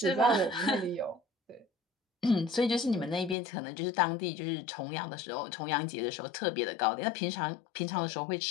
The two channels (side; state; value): right; drops out; at 3.4 s